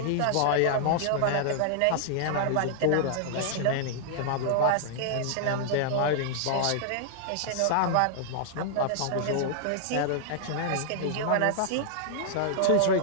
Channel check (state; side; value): different; both; correlation -0.01